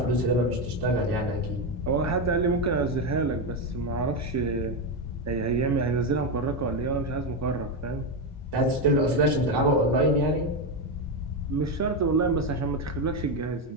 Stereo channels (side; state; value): both; normal; correlation 0.09